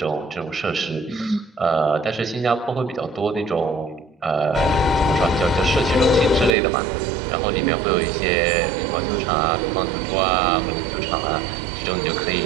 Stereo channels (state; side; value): drops out; left; at 6.6 s